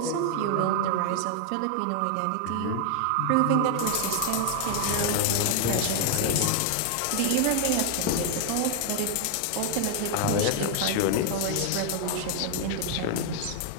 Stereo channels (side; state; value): both; different; correlation 0.00